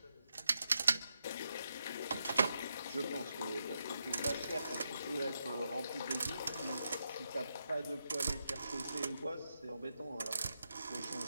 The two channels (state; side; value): inverted; both; correlation -0.84